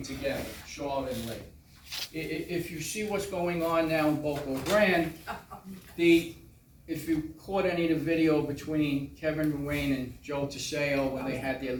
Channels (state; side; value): identical; both; correlation 1.00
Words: together, Charlotte and Lee. If you see what's going on now in Boca Grande, if you caught any of the video between Kevin Ruane and Joe Teseo when they had their